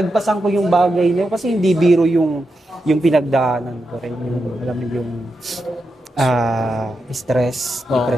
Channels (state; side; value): normal; both; correlation 0.87